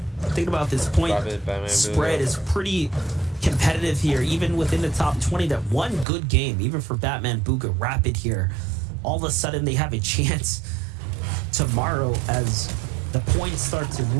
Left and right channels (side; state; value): left; drops out; at 6.1 s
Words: Think about this point spread is pretty competitive here, even within the top 20. That one good game, even for Batman Booga Rapid here, all of a sudden they have a chance tomorrow as the points start to